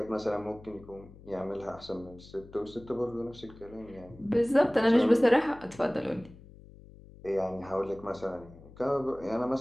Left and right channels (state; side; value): noise; left; hum, 20 dB below the sound